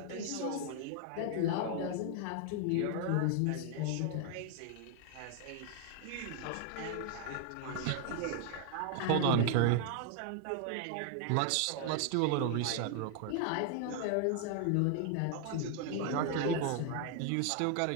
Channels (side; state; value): both; different; correlation 0.00